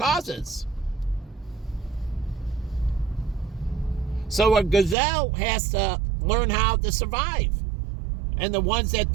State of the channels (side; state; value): left; drops out; at 5.0 s